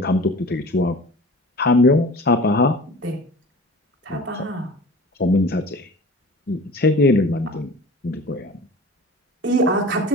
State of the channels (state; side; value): normal; both; correlation 0.40